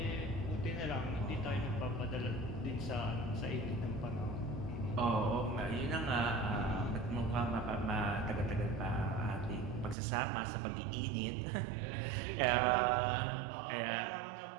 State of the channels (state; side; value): drops out; left; at 10.0 s